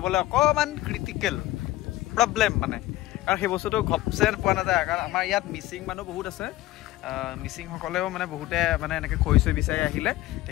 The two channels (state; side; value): quieter; right; 16.5 dB